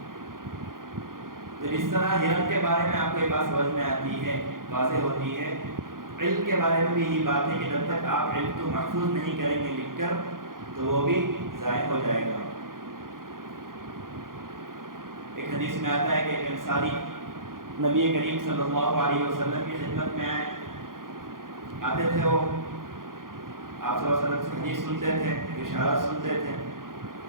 تو اس طرح ہرن کے بارے میں آپ کو یہ بات سمجھ میں آتی ہے، واضح ہوتی ہے. علم کے بارے میں بھی یہی بات ہے کہ جب تک آپ علم کو محفوظ نہیں کریں گے لکھ کر تو وہ بھی ضائع ہو جائے گا. ایک حدیث میں آتا ہے کہ ایک انصاری نبی کریم صلی اللہ علیہ وسلم کی خدمت میں آتے تھے. وہ آپ صلی اللہ علیہ وسلم سے حدیث سنتے تھے، اشارات سنتے تھے،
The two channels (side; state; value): left; late; 0.90 ms